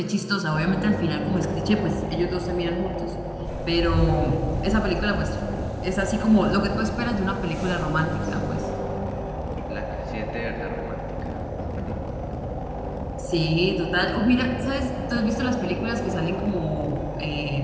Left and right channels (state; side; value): identical; both; correlation 1.00